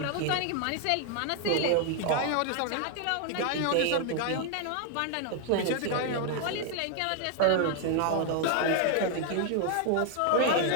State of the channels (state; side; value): different; both; correlation 0.00